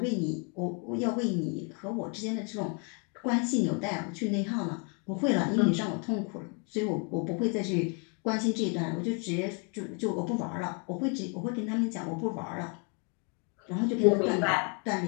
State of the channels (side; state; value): right; quieter; 36.1 dB